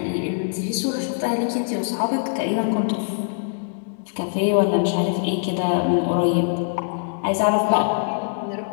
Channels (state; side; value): silent; right; digital silence